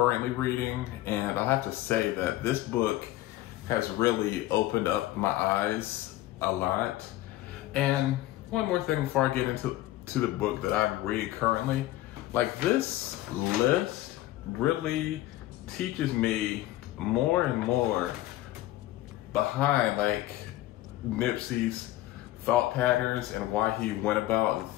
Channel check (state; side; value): quieter; right; 15.8 dB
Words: reading, and I have to say that this book has really opened up my eyes a lot. And one more thing before I get into the book that I'm reading currently, like this list really teaches me more and more behind like Nipsey's thought patterns and why he went about the